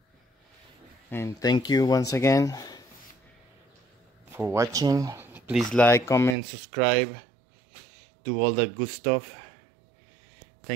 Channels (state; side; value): drops out; left; at 6.4 s